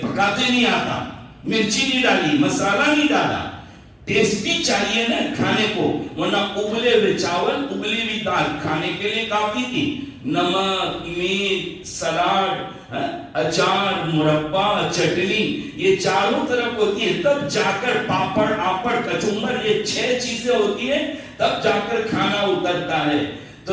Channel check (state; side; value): identical; both; correlation 1.00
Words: پکاتے نہیں آتا، مرچی نہیں ڈالی، مسالہ نہیں ڈالا؟ ٹیسٹی چاہیے نا کھانے کو، ورنہ ابلے ہوئے چاول، ابلی ہوئی دال کھانے کے لیے کافی تھی۔ نمک، میٹ، سلاد، اچار، مربع، چٹنی، یہ چاروں طرف ہوتی ہے، تب جا کر پاپڑ، آپڑ، کچمبر، یہ 6 چیزیں ہوتی ہیں، تب جا کر کھانا اترتا ہے۔